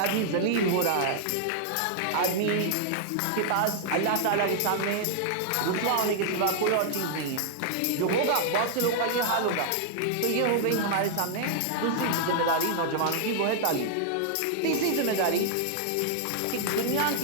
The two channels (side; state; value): both; different; correlation -0.01